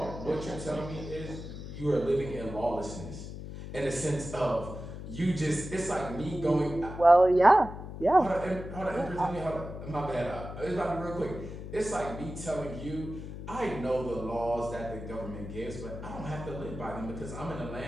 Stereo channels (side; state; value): left; noise; hum, 9 dB below the sound